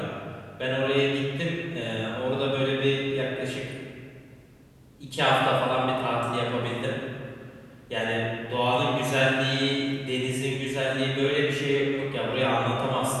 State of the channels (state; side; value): identical; both; correlation 1.00